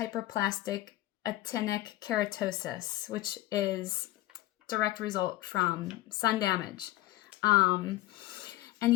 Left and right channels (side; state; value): right; quieter; 16.8 dB